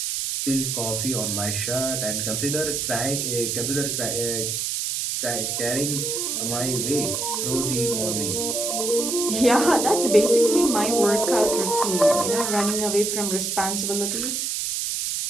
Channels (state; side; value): noise; right; hiss, 1 dB below the sound